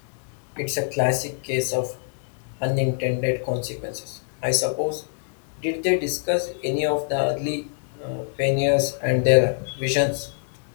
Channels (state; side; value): silent; right; digital silence